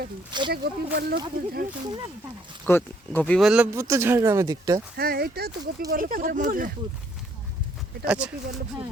এটা গোপীবল্লভপুর গোপীবল্লভপুর তো ঝাড়গ্রামের দিকটা হ্যাঁ এটা তো গোপীবল্লভপুরের মধ্যে এটা আচ্ছা। গোপীবল্লভপুর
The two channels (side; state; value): both; normal; correlation 0.67